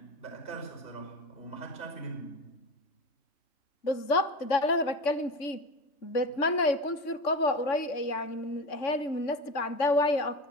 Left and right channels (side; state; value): right; late; 3.6 ms